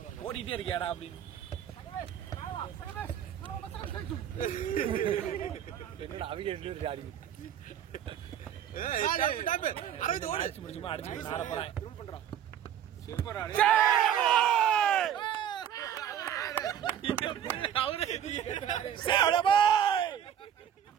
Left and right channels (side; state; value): left; quieter; 9.7 dB